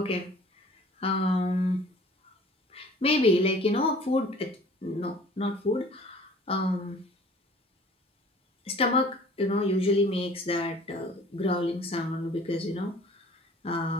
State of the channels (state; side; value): normal; both; correlation 0.49